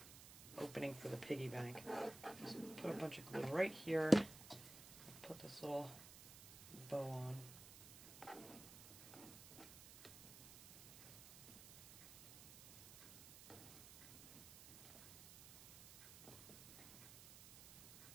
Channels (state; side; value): noise; right; hiss, 16 dB below the sound